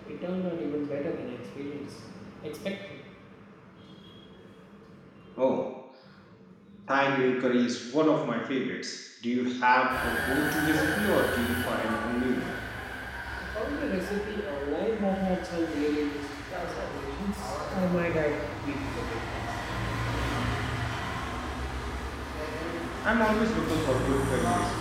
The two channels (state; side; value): identical; both; correlation 1.00